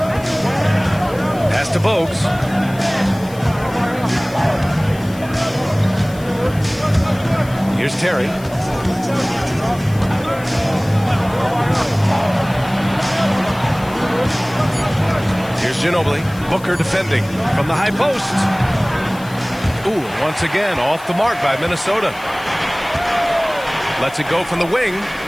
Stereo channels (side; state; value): left; noise; hiss, 21 dB below the sound